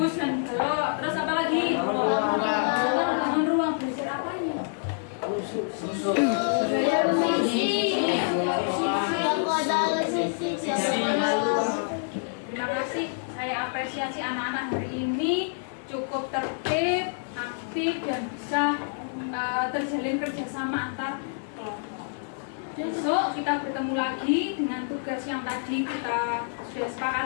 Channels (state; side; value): silent; right; 60 dB below the other